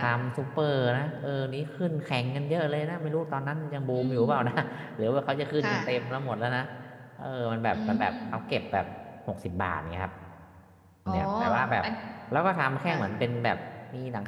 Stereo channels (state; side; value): identical; both; correlation 1.00